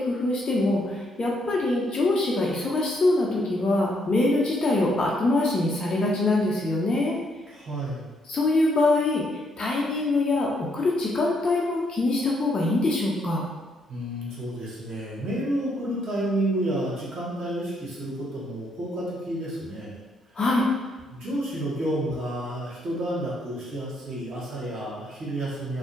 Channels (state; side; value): normal; both; correlation 0.74